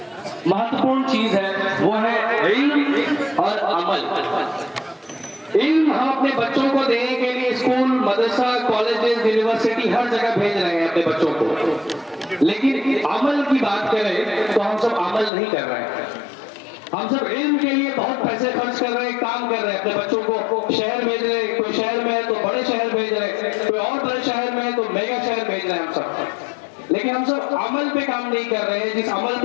महत्वपूर्ण चीज है, वो है इल्म और अमल। इल्म हम अपने बच्चों को देने के लिए स्कूल, मदरसा, कॉलेजेस, यूनिवर्सिटी हर जगह भेज रहे हैं अपने बच्चों को, लेकिन अमल की बात करें तो हम सब अमल नहीं कर रहे हैं। हम सब इल्म के लिए बहुत पैसे खर्च कर रहे हैं, काम कर रहे हैं, अपने बच्चों को शहर भेज रहे हैं, कोई शहर में है तो बड़े शहर भेज रहे हैं, कोई और बड़े शहर में है तो मेगा शहर भेज रहे हैं हम सब, लेकिन हम सब अमल पे काम नहीं कर रहे हैं। जिस अमल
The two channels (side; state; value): right; drops out; at 15.3 s